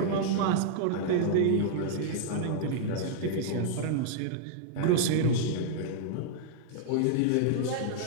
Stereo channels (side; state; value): both; different; correlation -0.01